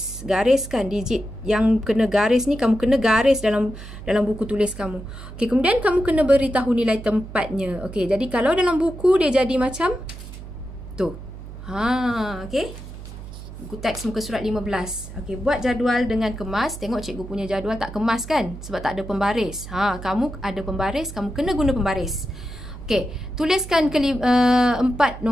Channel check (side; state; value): right; noise; hum, 13 dB below the sound